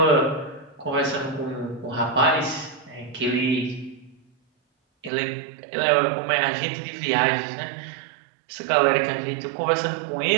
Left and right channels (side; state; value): left; drops out; at 5.1 s